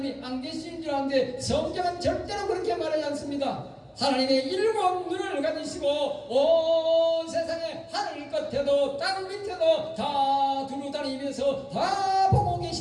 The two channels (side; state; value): both; identical; correlation 1.00